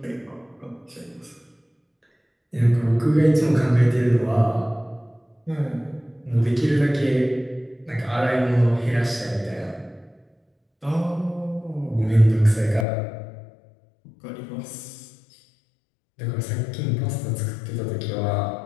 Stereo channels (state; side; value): drops out; right; at 12.9 s